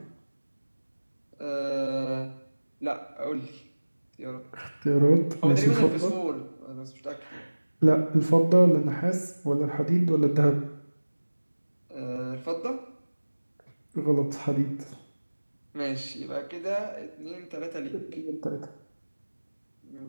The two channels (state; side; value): inverted; both; correlation -1.00